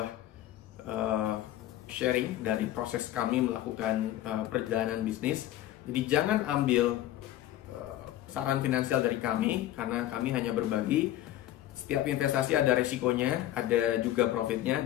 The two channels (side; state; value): right; quieter; 13.7 dB